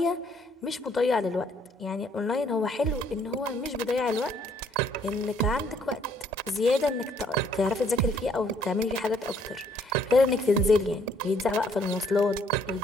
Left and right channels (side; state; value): both; normal; correlation 0.65